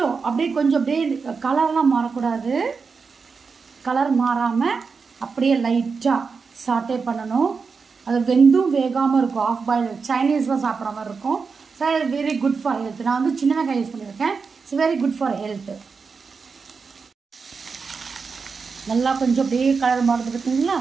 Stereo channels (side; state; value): left; quieter; 5.1 dB